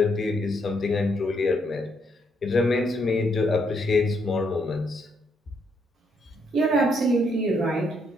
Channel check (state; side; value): normal; both; correlation 0.74